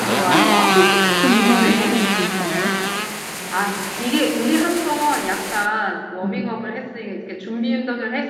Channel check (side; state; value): both; identical; correlation 1.00